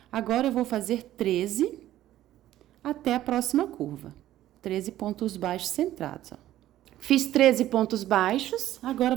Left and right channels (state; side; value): quieter; left; 13.6 dB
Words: Agora, eu vou fazer 13 até a próxima curva. 13 pontos baixos centrados, ó. Fiz 13 pontos baixos, agora